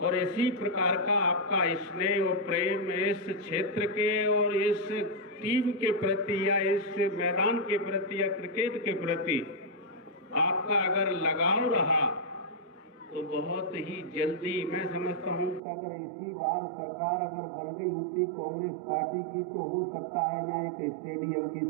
इसी प्रकार का आपका स्नेह और प्रेम इस क्षेत्र के और इस टीम के प्रति या इस मैदान के प्रति या क्रिकेट के प्रति आपका अगर लगाव रहा तो बहुत ही जल्दी मैं समझता हूं कि अगर इसी बार सरकार अगर बन गई होती कांग्रेस पार्टी की तो हो सकता है यहाँ एक स्टेडियम की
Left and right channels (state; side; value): drops out; left; at 15.6 s